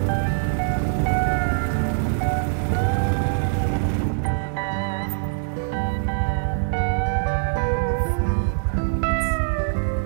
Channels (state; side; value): silent; left; 63 dB below the other